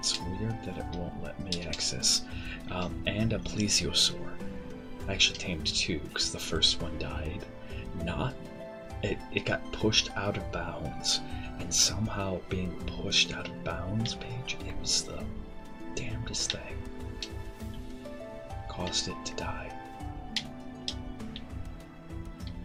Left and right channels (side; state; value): both; identical; correlation 1.00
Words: weird that it won't let me access. And a plesiosaur. I actually tamed two because the first one died. It got pushed out of bounds, and somehow being pushed out of bounds, Paige, it was the damnedest thing. Caused it to die.